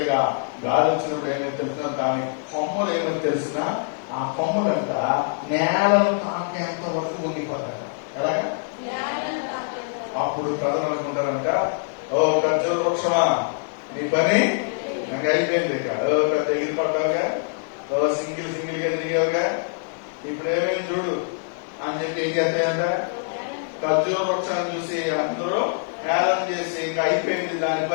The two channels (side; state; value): right; silent; digital silence